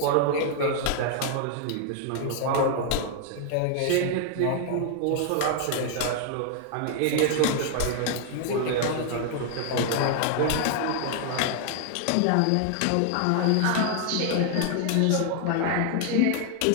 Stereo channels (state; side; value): different; both; correlation 0.00